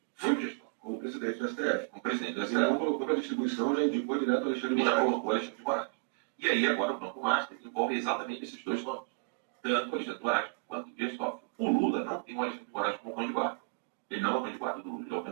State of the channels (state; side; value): quieter; left; 35.6 dB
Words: foi o gestor. Como presidente do STF. Como presidente do Ele STF. não colocou para distribuição, já indicou direto ao Alexandre de E já Moraes. colocou Alexandre de Moraes. E aí agora o Banco Master envolve exatamente esses dois nomes. Tanto o Alexandre de Moraes quanto o Dias Toffoli. O Lula não tem o Alexandre de Moraes como cão de guarda. Ele não é o cão de guarda do Lula, ele é o cão